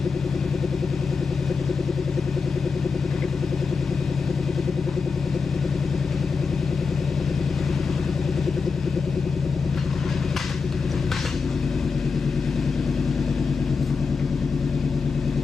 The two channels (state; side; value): quieter; right; 4.9 dB